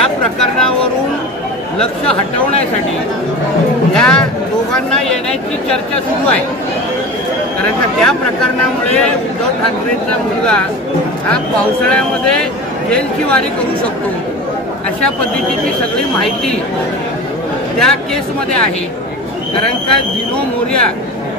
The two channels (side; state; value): both; normal; correlation 0.32